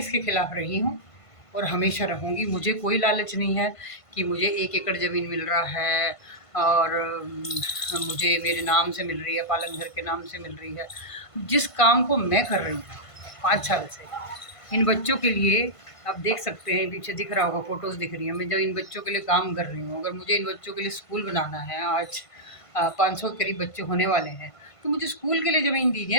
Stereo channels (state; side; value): late; right; 1.5 ms